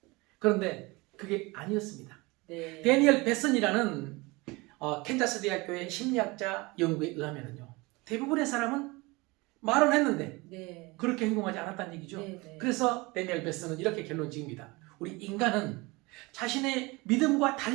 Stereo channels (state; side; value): quieter; left; 24.2 dB